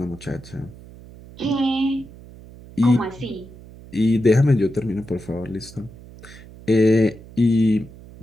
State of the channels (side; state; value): right; noise; hum, 19 dB below the sound